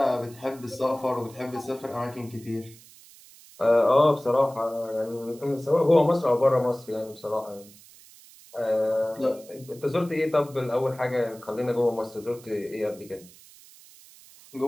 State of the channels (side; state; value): right; noise; hiss, 22 dB below the sound